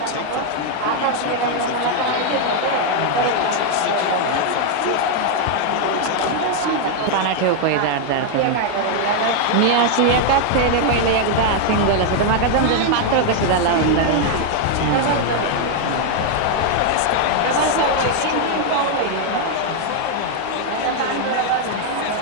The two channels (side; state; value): both; different; correlation 0.00